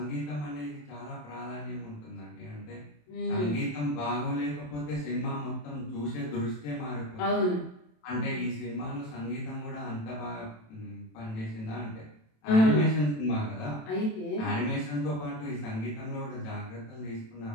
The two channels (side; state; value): right; late; 27 ms